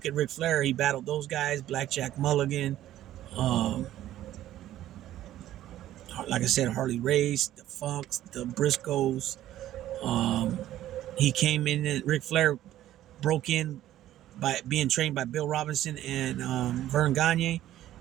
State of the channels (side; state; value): left; quieter; 13.3 dB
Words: at Ric Flair, he battled those guys: Blackjack Mulligan, like I said, Harley Race, the Funks, the Briscoes. He came in, and Ric Flair broke in by being trained by Bill Robinson and Vern Gagne.